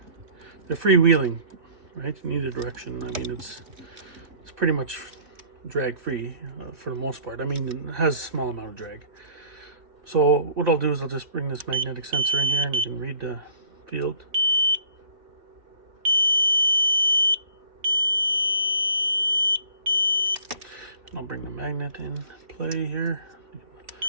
freewheeling, right, in either direction. I mean, it's pretty much drag free for the most part. I mean, it has a small amount of drag. So what I'll do is I'll just bring this magnetic sensor in here, and you can read the field. I'll bring the magnet in play here.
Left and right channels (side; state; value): left; late; 2.9 ms